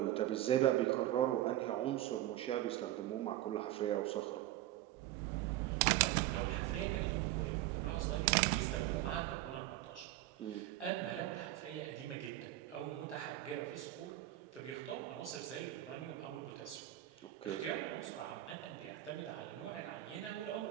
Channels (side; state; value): left; quieter; 14.5 dB